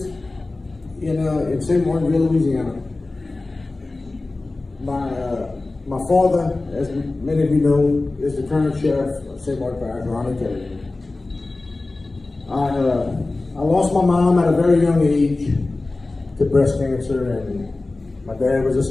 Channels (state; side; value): quieter; right; 3.2 dB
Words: in St. Martinville, Louisiana. My father, as many of you know, is the current sheriff of St. Martin Parish, Ronnie Theriot. I lost my mom at a very young age to breast cancer, and my dad was a